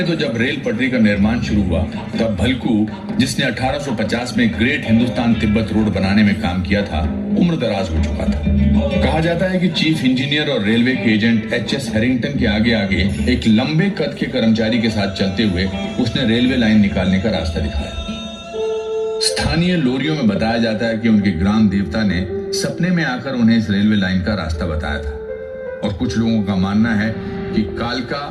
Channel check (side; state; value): both; identical; correlation 1.00